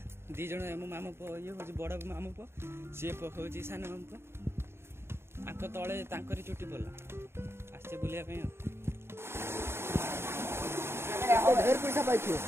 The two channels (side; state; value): left; late; 0.12 ms